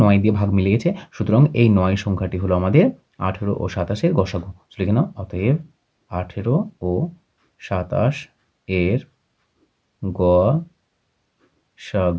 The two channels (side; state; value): both; identical; correlation 1.00